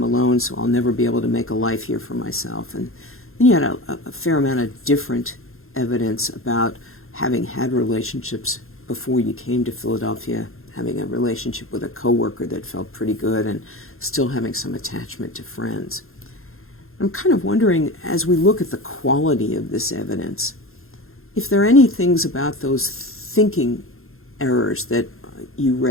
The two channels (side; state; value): right; late; 0.61 ms